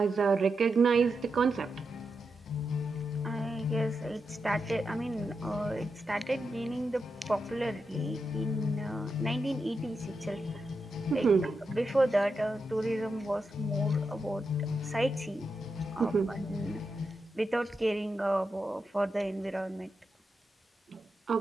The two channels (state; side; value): normal; both; correlation 0.87